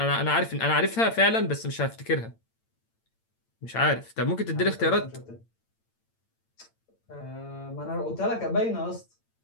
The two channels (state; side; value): late; right; 8.8 ms